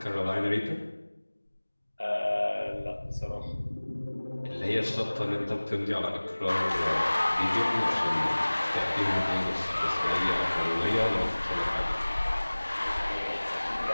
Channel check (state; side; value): inverted; both; correlation -1.00